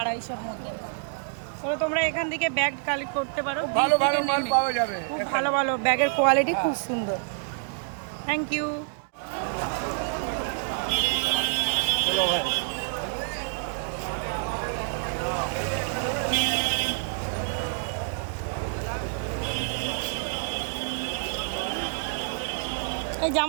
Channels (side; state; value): left; silent; digital silence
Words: মধ্যে আছে। চলো তোমরা এখান থেকে ব্যাগ কালেক্ট করতে পারো। ভালো থেকে ভালো মাল নেমে পাওয়া যাবে। খুব ভালো ভালো ব্যাগের কোয়ালিটি খুব সুন্দর। Thank you. এই